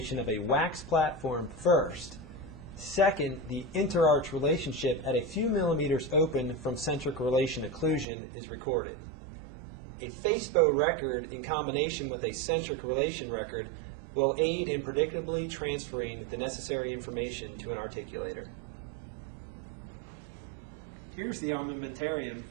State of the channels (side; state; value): left; drops out; at 8.1 s